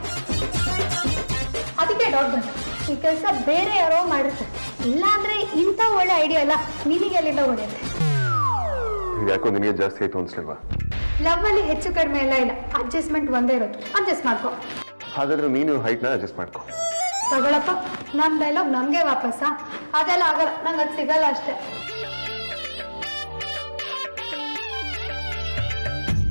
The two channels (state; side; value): inverted; both; correlation -1.00